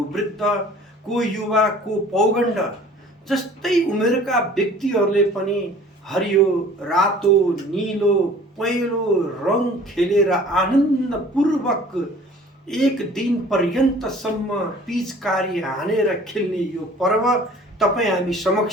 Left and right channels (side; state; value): both; normal; correlation 0.49